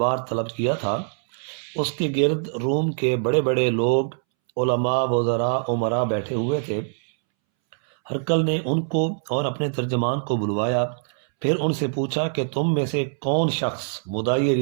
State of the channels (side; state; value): left; silent; 63 dB below the other